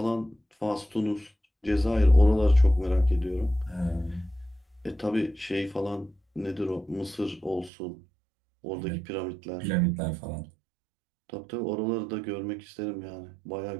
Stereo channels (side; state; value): left; drops out; at 7.7 s